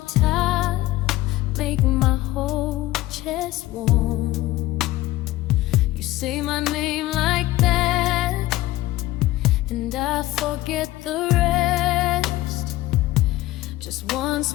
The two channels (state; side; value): quieter; right; 16.9 dB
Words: tile make my whole chest warm. You say my name like that, and I forget the rest. Just one